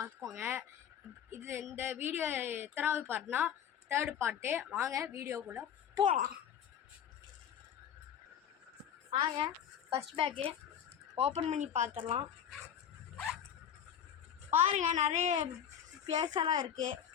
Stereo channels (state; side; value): quieter; right; 9.0 dB